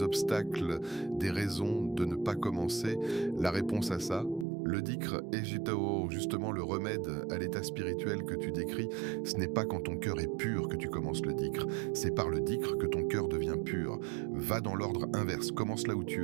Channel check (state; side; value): drops out; left; at 4.5 s